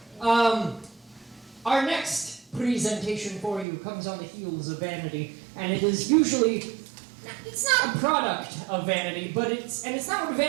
marketing. Our next presentation for you comes on the heels of vanity, and it is usually, it's not a product of vanity, but it's not what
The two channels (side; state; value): left; drops out; at 3.7 s